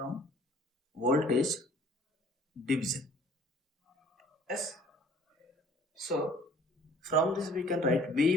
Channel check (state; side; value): normal; both; correlation 0.54